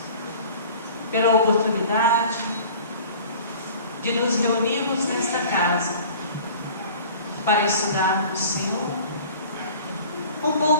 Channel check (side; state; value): both; inverted; correlation -0.44